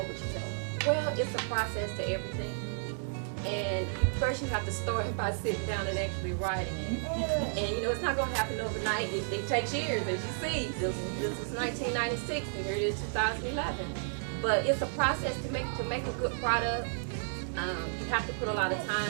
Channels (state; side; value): silent; left; digital silence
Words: would you tell them? Well, it's a process to everything. And first you have to start by sitting down and actually writing it. And it's not going to happen overnight. It takes years, as you see. This was 1996 and here it is 2011. But it's a process to make a good product. You have to put a lot of